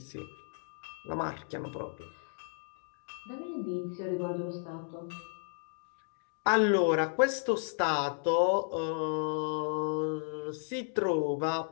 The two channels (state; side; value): silent; right; digital silence